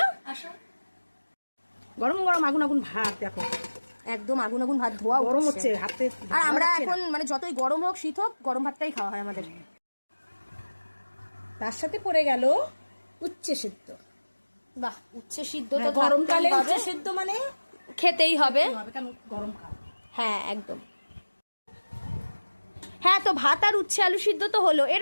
আসো। গরম গরম আগুন আগুন ভাত দেখো, একদম আগুন আগুন ভাত ধোয়া গরম হচ্ছে হাতে। আর আমরা এখন মানে যতই গরম হোক শীত হোক গরম ভাতটাই খাওয়া হয় আমাদের। তার সাথে পড়ে গেল উচ্ছে সিদ্ধ। বাহ, উচ্ছে সিদ্ধ তো গরমকালে উচ্ছে সিদ্ধ মানে খেতেই হবে, কেন গরমকাল। হ্যাঁ একদম। হ্যাঁ, তো ভাত আর উচ্ছে আলু সিদ্ধ তো হলো,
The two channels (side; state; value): both; inverted; correlation -1.00